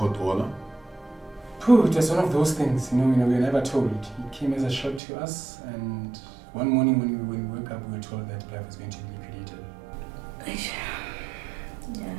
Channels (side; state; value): left; drops out; at 5.0 s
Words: order. It was one of those things, we were never told. It came as a shock to us, and one morning when we woke up, we were told that Blyvoor was going to be liquidated.